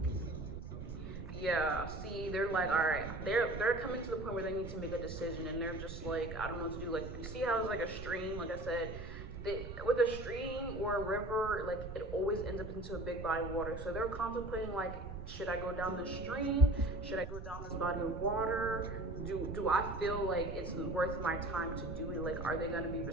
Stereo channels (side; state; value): right; noise; rumble, 10 dB below the sound